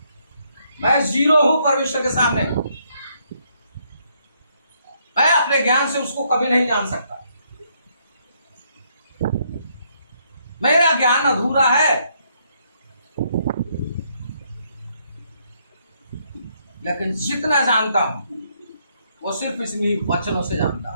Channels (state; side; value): inverted; both; correlation -0.72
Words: मैं जीरो हूं परमेश्वर के सामने। मैं अपने ज्ञान से उसको कभी नहीं जान सकता। मेरा ज्ञान अधूरा है, लेकिन जितना जानता हूं वो सिर्फ इसलिए वचनों से जानता